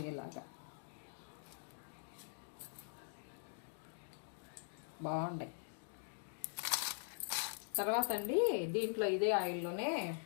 ఇలాగా బాగుంటాయి. తర్వాత అండి దీంట్లో ఇదే ఆయిల్లోనే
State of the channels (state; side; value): silent; right; digital silence